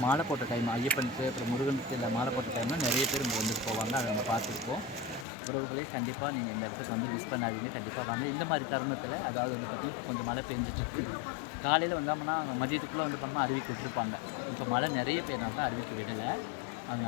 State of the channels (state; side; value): drops out; right; at 5.2 s